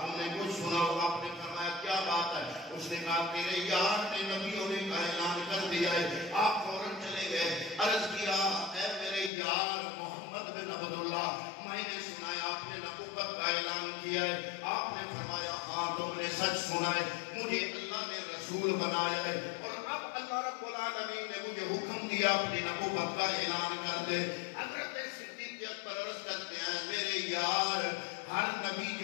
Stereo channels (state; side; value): drops out; right; at 9.3 s